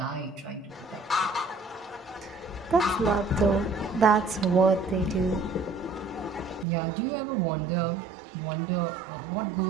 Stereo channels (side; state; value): left; drops out; at 6.7 s